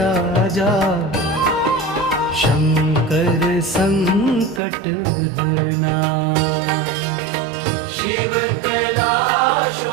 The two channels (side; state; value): left; drops out; at 4.6 s